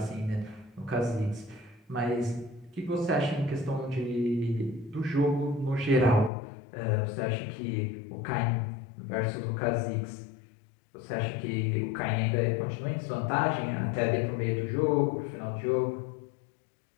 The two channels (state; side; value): drops out; right; at 6.3 s